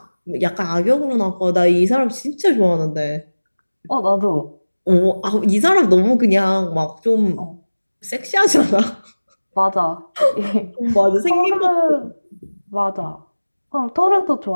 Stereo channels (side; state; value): both; inverted; correlation -1.00